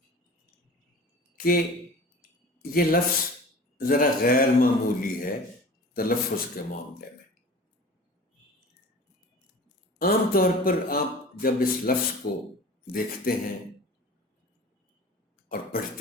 کہ یہ لفظ ذرا غیر معمولی ہے تلفظ کے معاملے میں۔ عام طور پر آپ جب اس لفظ کو دیکھتے ہیں اور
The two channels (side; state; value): both; normal; correlation 0.40